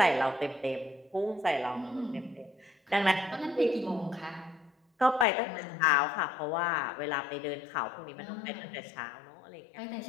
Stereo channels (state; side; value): drops out; right; at 5.2 s